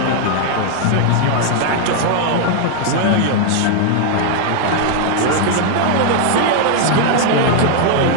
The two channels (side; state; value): both; different; correlation 0.00